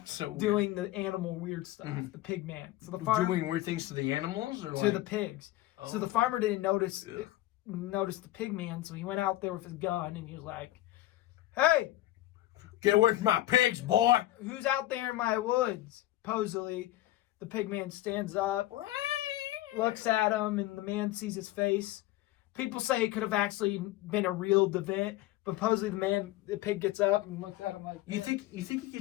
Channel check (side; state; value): right; quieter; 15.9 dB